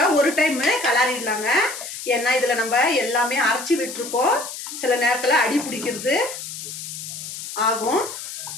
ஒரு டைம் கலரிடலாங்க. ஏன்னா இதில் நம்ம எல்லாமே அரைச்சி விட்டுருக்கோம். சில நேரத்தில் அடி பிடிக்கிறது ஆகும்.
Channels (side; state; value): left; noise; hiss, 9 dB below the sound